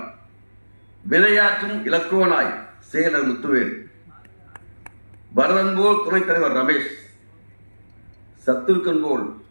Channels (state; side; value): inverted; both; correlation -1.00